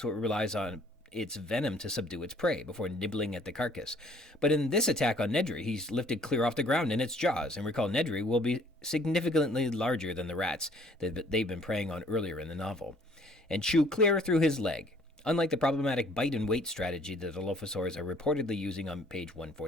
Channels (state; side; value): normal; both; correlation 0.58